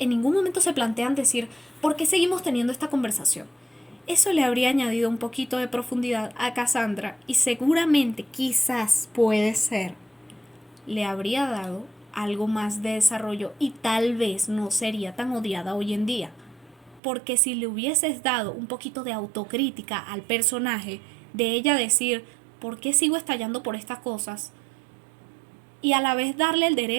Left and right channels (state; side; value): drops out; left; at 17.0 s